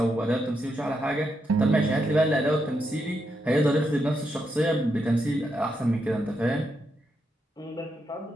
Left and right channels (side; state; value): both; normal; correlation 0.82